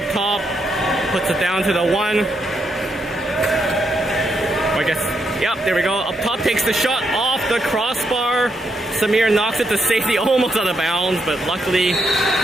top. Puts it down to the 1. I guess, yep, there we go. Up top takes the shot off the crossbar. Samir knocks it to safety, almost out of bounds, but luckily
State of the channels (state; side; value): normal; both; correlation 0.79